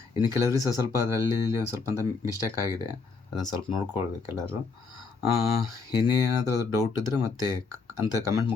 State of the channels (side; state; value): right; quieter; 4.6 dB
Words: ಇನ್ನು ಕೆಲವರಿಗೆ ಸ್ವಲ್ಪ ಅದರಲ್ಲಿ ಇಲ್ಲಿ ಒಂದು ಸ್ವಲ್ಪ ಮಿಸ್ಟೇಕ್ ಆಗಿದೆ. ಅದನ್ನು ಸ್ವಲ್ಪ ನೋಡ್ಕೊಳ್ಬೇಕು ಎಲ್ಲರೂ. ಇನ್ನೇನಾದರೂ ಅದು ಡೌಟ್ ಇದ್ದರೆ ಮತ್ತೆ ಅಂತ ಕಮೆಂಟ್